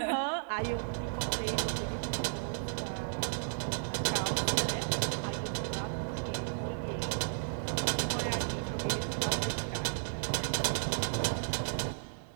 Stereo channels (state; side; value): silent; left; digital silence